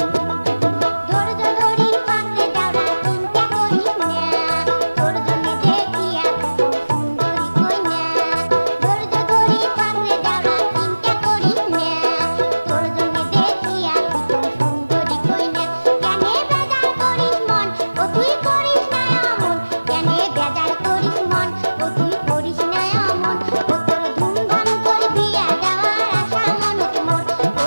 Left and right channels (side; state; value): both; inverted; correlation -1.00